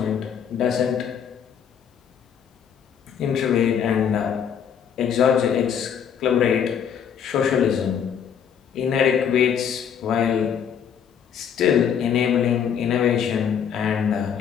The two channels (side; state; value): right; quieter; 8.0 dB